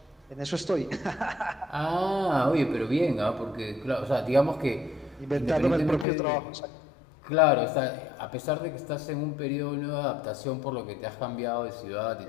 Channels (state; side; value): drops out; right; at 6.1 s